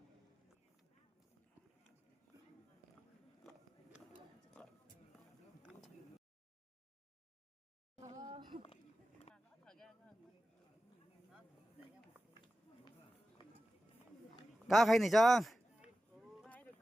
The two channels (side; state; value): both; normal; correlation 0.94